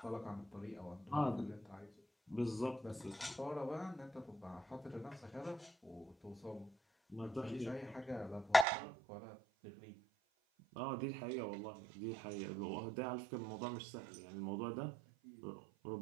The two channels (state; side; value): drops out; left; at 8.7 s